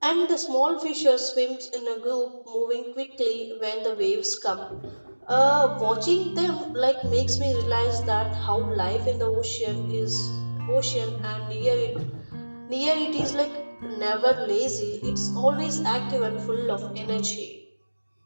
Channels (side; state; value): both; inverted; correlation -1.00